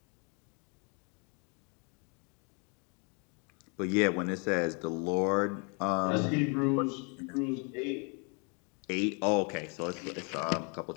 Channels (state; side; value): quieter; right; 34.8 dB